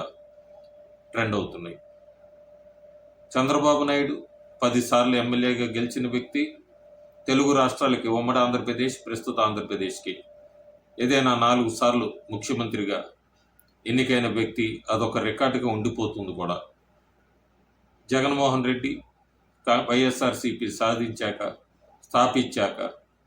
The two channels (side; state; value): both; identical; correlation 1.00